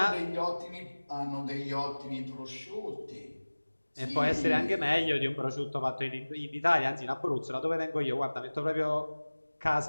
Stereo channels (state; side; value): inverted; both; correlation -1.00